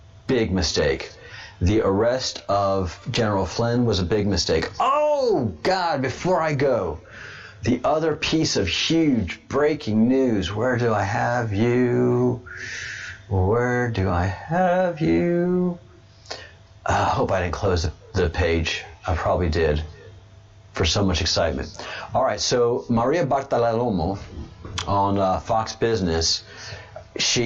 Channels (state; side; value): identical; both; correlation 1.00